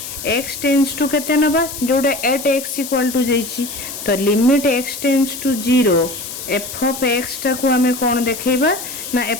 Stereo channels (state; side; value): noise; left; hiss, 9 dB below the sound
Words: x tends to केते नबा जोटा एट x इक्वल टू देछि तो limit x tends to 0 f of x टा को हमें कोन देखैबा ना